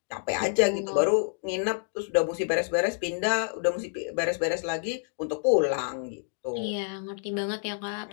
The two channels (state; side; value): silent; right; digital silence